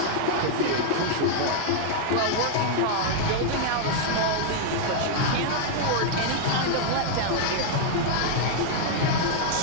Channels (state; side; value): different; both; correlation 0.00